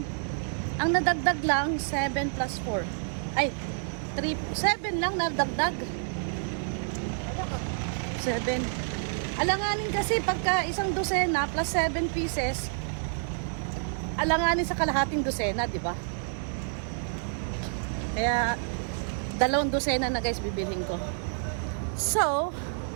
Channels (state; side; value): silent; left; digital silence